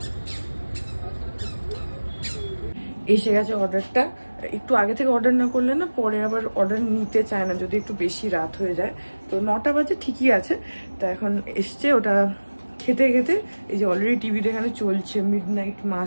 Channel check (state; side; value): inverted; both; correlation -1.00